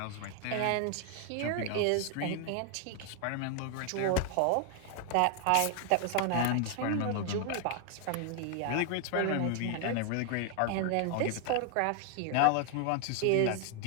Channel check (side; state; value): both; different; correlation 0.00